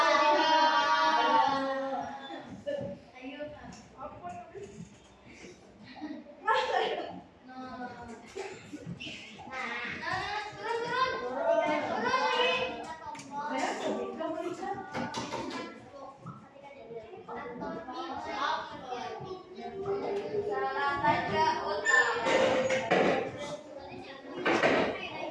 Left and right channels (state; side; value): identical; both; correlation 1.00